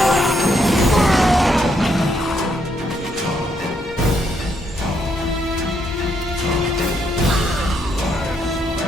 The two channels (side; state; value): both; normal; correlation 0.75